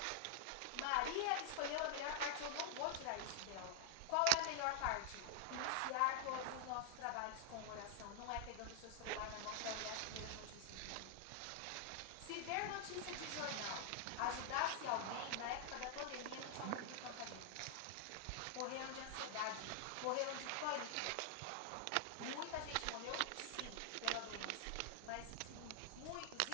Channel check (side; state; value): both; different; correlation 0.00